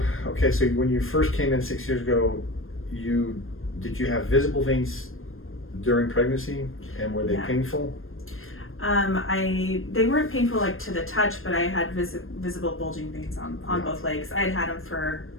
when you first came in 6 years ago, did you have visible veins during pregnancy, and were they painful? They weren't painful like to the touch, but I had visible bulging veins on both legs. I had them for,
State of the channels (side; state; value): right; late; 0.60 ms